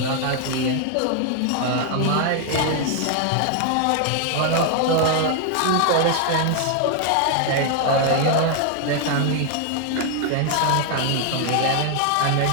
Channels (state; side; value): different; both; correlation 0.00